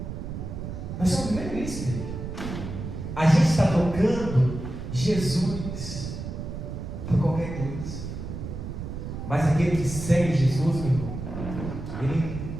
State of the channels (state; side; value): noise; right; rumble, 7 dB below the sound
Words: Nós estamos vivendo isso, igreja. A gente está tocando Jesus por qualquer coisa. Mas aquele que segue Jesus, meu irmão, ele